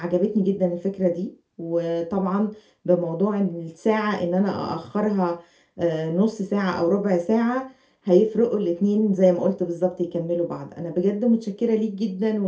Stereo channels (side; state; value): both; identical; correlation 1.00